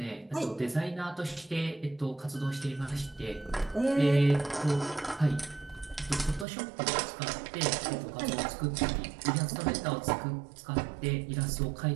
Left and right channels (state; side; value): drops out; left; at 6.5 s